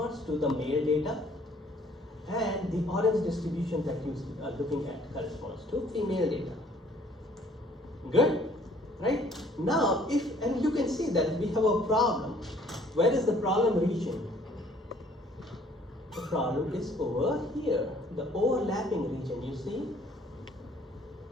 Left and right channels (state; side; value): normal; both; correlation 0.59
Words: to the male data, and the orange distribution that you are looking at corresponds to female data. Good? Right? Now, and you can see that we have a problem. Where is the problem region? The problem is over here, the overlapping region, you see?